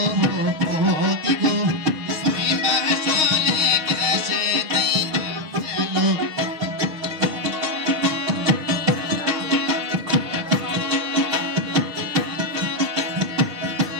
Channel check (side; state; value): left; late; 6.4 ms